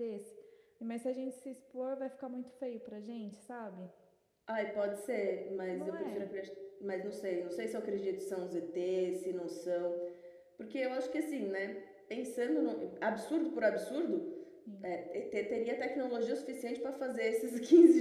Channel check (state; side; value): identical; both; correlation 1.00